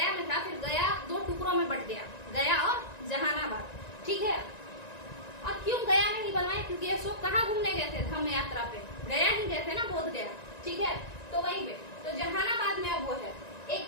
में था, फिर गया 2 टुकड़ों में बट गया, गया और जहानाबाद। ठीक है, और क्यों गया में ही बनवाए? क्योंकि अशोक कहाँ घूमने गए थे? धम्म यात्रा पे गया ही गए थे ना, बोध गया। ठीक है, तो वहीं पे, तो जहानाबाद में अब वो है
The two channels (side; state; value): right; late; 1.9 ms